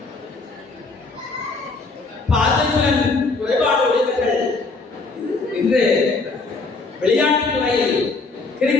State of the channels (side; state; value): right; quieter; 3.7 dB